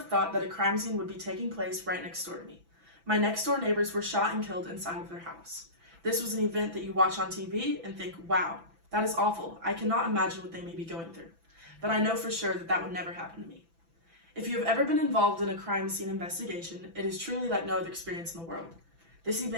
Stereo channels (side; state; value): left; late; 6.0 ms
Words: thought that a crime scene would be taking place right next door to me. My next door neighbors were shot and killed inside of their house. This was an event that you watch on TV and think, wow, that is awful. I cannot imagine what they may be going through. But I know for sure that that would never happen to me. If you have ever been involved in a crime scene investigation, it is truly like no other experience in the world. This